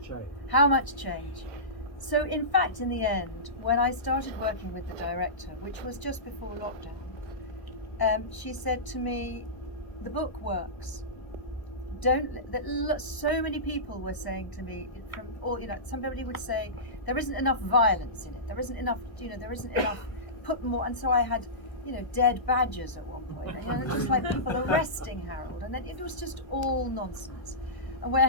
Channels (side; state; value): right; late; 1.0 ms